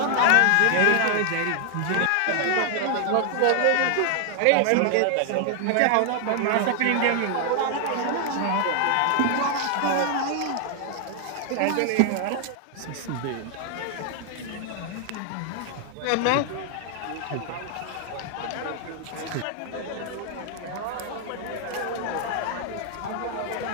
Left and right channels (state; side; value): different; both; correlation 0.00